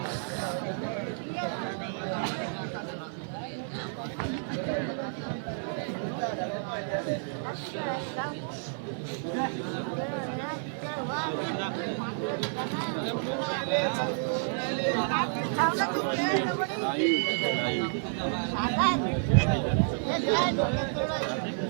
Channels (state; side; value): silent; left; 58 dB below the other